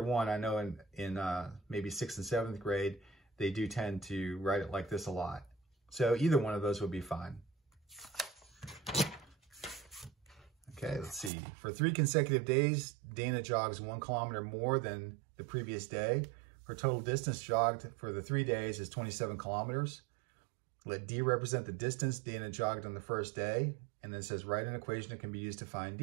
one, I know in maybe 6th and 7th grade, they do tend to write it like this a lot. So either one of those would be fine. Okay, let's see. For 3 consecutive days, Dana jogs 1 kilometer more than the previous day. Her total distance jogged for the 3 days is 27 kilometers. Let D represent the distance Dana jogged on the first day. And then it says, write an equation that can be used to find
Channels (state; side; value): drops out; left; at 11.3 s